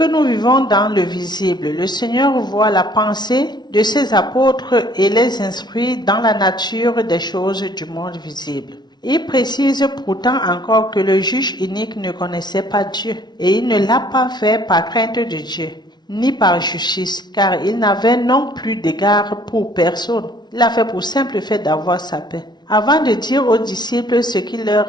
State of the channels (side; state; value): right; late; 0.20 ms